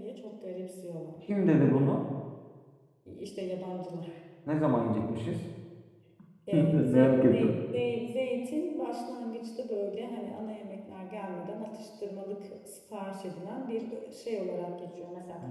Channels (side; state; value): both; identical; correlation 1.00